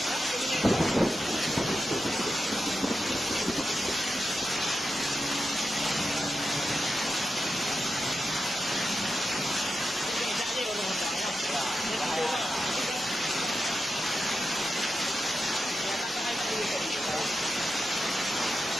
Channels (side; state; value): both; normal; correlation 0.90